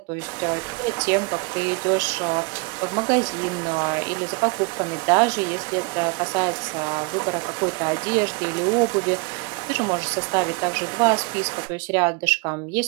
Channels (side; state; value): left; quieter; 30.1 dB